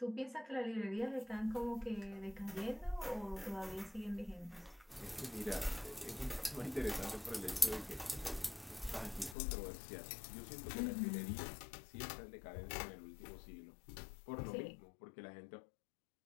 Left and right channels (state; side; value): drops out; right; at 9.3 s